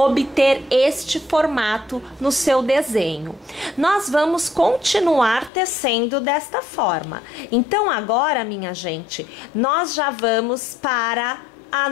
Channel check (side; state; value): right; drops out; at 5.5 s